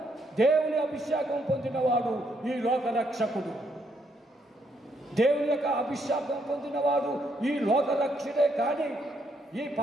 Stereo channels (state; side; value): normal; both; correlation 0.74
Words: దేవుని అభిషేకం పొందినవాడు ఈ లోక రక్షకుడు. దేవుని యొక్క అభిషేకం పొందినవాడు ఈ లోక రక్షకుడే. కానీ ఈ